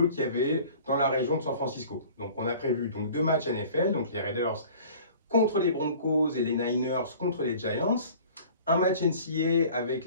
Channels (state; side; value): inverted; both; correlation -0.46